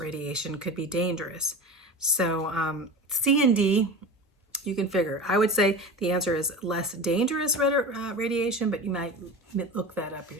could be dangerous. So C and D, you can figure. I would say the answer is less dangerous radiation, but you might look that up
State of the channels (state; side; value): normal; both; correlation 0.31